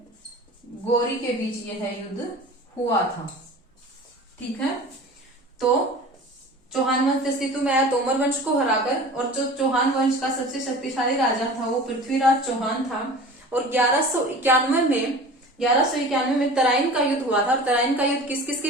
गौरी के बीच यह युद्ध हुआ था। ठीक है। तो चौहान वंश अस्तित्व में आया तोमर वंश को हराकर, और जो चौहान वंश का सबसे शक्तिशाली राजा था वो पृथ्वीराज चौहान था। और 1191 में तराइन का युद्ध हुआ था। और तराइन का युद्ध किस किस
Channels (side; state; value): both; normal; correlation 0.39